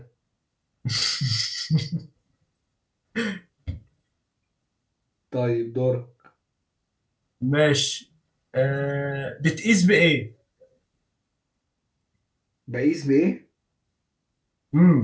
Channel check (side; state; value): both; identical; correlation 1.00